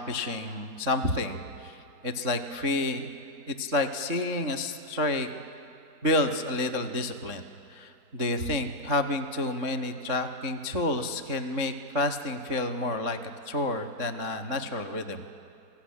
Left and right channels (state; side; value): late; left; 3.7 ms